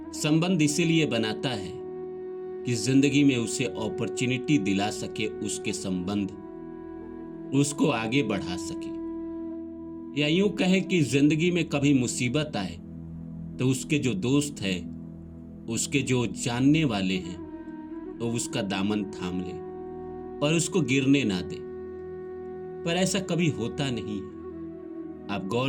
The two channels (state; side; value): identical; both; correlation 1.00